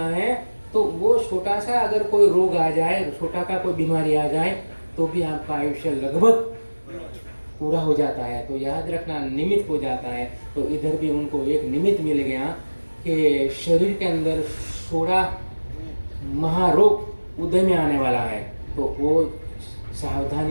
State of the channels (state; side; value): inverted; both; correlation -1.00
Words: है। तो वो छोटा सा अगर कोई रोग आ जाए, छोटा का कोई बीमारी आ जाए, तो भी आपका आयुष्य लगभग पूरा हो जाता है। तो याद रखना, निमित्त हो जाता है। तो इधर भी उनको एक निमित्त मिल गया कि शरीर के अंदर 16 महारोग उदय में आने वाला है। तो वो